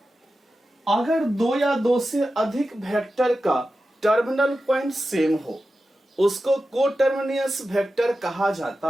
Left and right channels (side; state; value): both; normal; correlation 0.92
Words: अगर दो या दो से अधिक वेक्टर का टर्मिनल पॉइंट सेम हो, उसको कोटर्मिनियस वेक्टर कहा